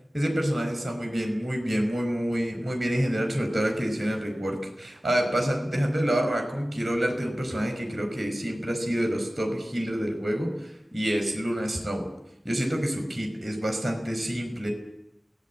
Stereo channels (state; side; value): normal; both; correlation 0.97